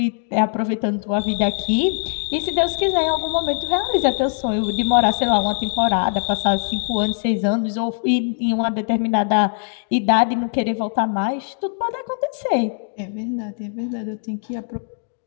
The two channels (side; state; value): right; silent; digital silence